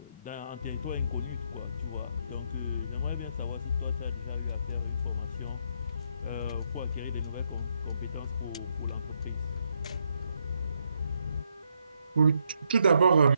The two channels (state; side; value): inverted; both; correlation -0.76